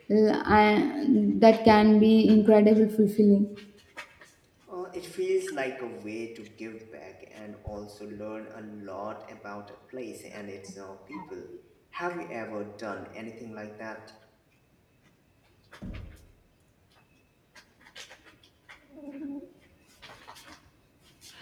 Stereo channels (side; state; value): both; identical; correlation 1.00